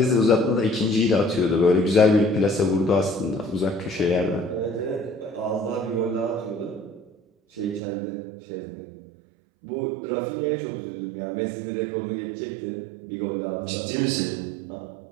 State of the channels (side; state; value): left; drops out; at 7.8 s